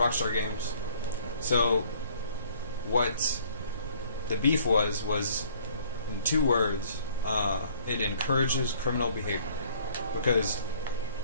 Games. So, what the beef was in 2 words, it encourages criminal behavior, because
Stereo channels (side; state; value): both; inverted; correlation -0.57